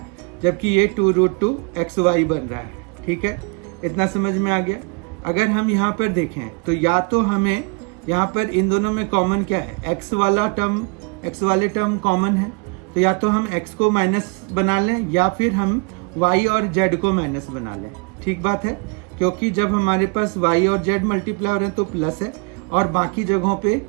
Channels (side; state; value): left; quieter; 33.7 dB